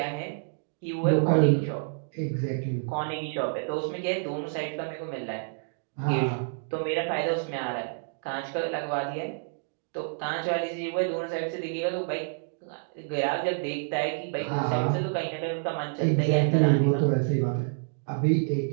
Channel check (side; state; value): left; silent; digital silence